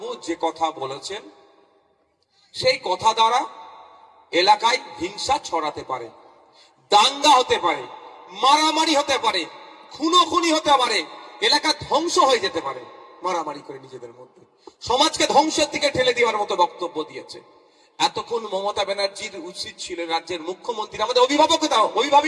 যে কথা বলেছেন, সেই কথা দ্বারা এলাকায় হিংসা ছড়াতে পারে, দাঙ্গা হতে পারে, মারামারি হতে পারে, খুনোখুনি হতে পারে, এলাকা ধ্বংস হয়ে যেতে পারে। মারামারি করে নিজেদের মধ্যে সমাজকে ধ্বংসের দিকে ঠেলে দেওয়ার মতো বক্তব্য দিয়েছে। এতক্ষণ মমতা ব্যানার্জির উচিত ছিল রাজ্যের মুখ্যমন্ত্রী, আমাদের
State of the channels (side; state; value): both; identical; correlation 1.00